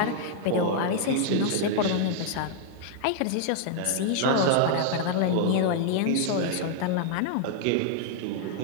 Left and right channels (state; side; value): different; both; correlation 0.00